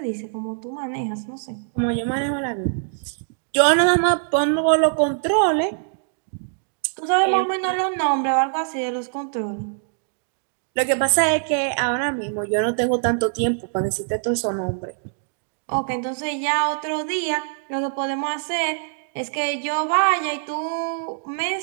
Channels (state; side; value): silent; left; digital silence